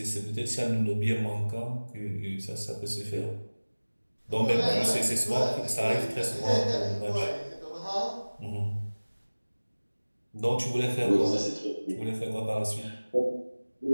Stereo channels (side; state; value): both; inverted; correlation -1.00